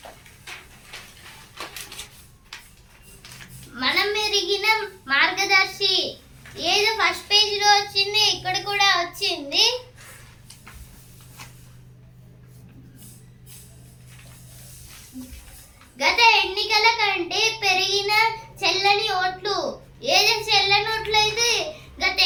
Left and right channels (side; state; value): both; identical; correlation 1.00